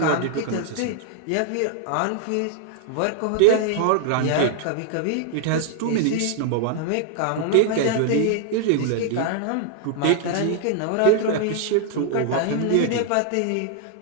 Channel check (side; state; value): both; different; correlation 0.00